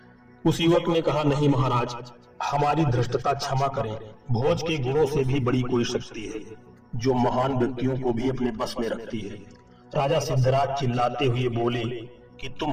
उस युवक ने कहा, नहीं महाराज, हमारी धृष्टता क्षमा करें। भोज के गुणों से भी बड़ी कोई शक्ति है जो महान व्यक्तियों को भी अपने बस में रखती है। राजा सिद्धराज चिल्लाते हुए बोले कि तुम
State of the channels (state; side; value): identical; both; correlation 1.00